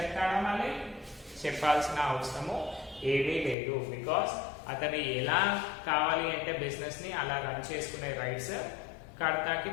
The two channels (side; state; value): right; drops out; at 3.6 s